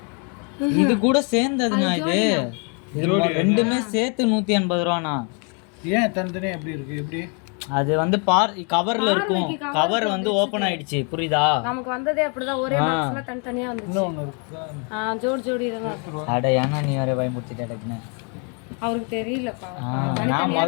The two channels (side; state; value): right; quieter; 37.3 dB